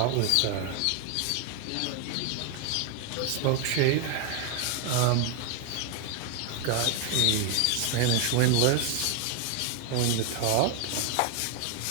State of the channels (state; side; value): different; both; correlation 0.01